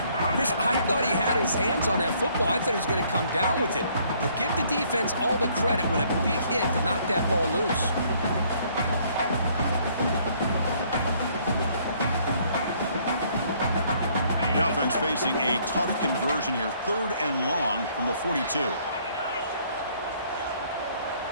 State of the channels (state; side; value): inverted; both; correlation -0.63